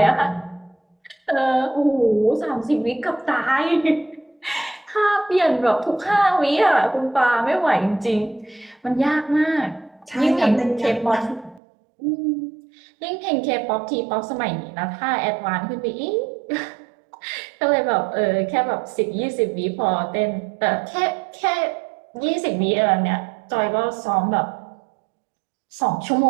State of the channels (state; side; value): drops out; left; at 11.6 s